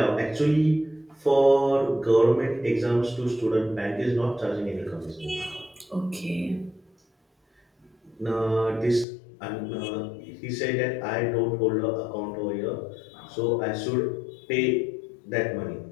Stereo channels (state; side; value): drops out; right; at 9.1 s